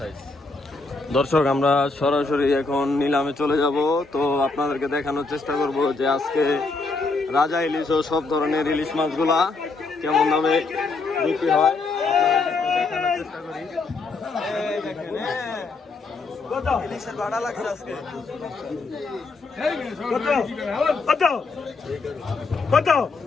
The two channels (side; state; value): right; quieter; 3.8 dB